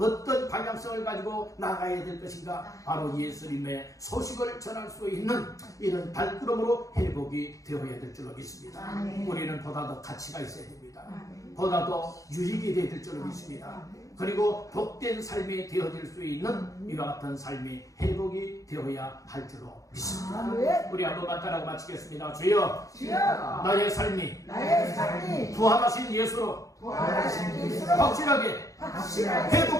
방향성을 가지고 나가야 될 것인가 바로 예수님의 소식을 전할 수 있는 이런 발걸음으로 회복이 되어야 될 줄로 믿습니다. 우리는 보다 더 가치가 있어야 됩니다. 보다 더 유익이 되어야 될 줄로 믿습니다. 그리고 복된 삶이 되어질 수 있는 이와 같은 삶이 회복이 되어야 할 줄로 믿습니다. 우리 한번만 따라 마치겠습니다. 주여, 나의 삶이 부활하신 예수로 확실하게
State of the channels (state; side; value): late; right; 0.16 ms